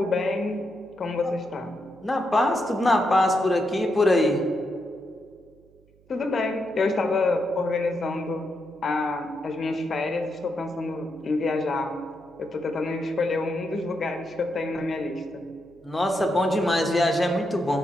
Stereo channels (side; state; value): right; noise; hum, 30 dB below the sound